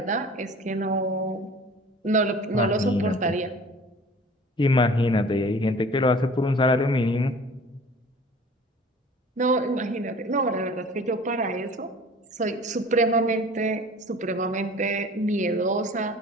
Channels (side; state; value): both; normal; correlation 0.45